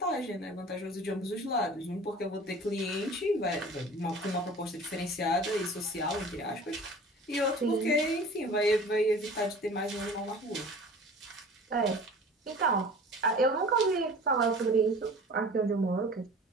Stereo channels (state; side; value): normal; both; correlation 0.43